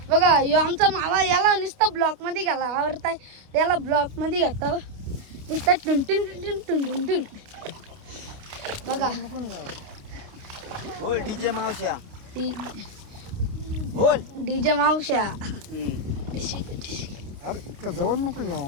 बघा यो आमचा मावा. याला नुसतं ब्लॉक मध्ये घाला आवडताय. याला ब्लॉक मध्ये घाता नुसतं टुनटुन टुन टुन टुन टुन. बघा बोल डीजे मावश्या. डीजे मावश्या. इतकं जवळ नको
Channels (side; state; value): left; late; 29 ms